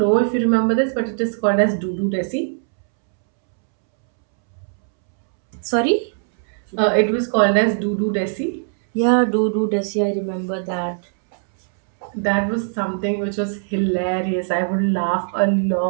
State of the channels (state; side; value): silent; left; 66 dB below the other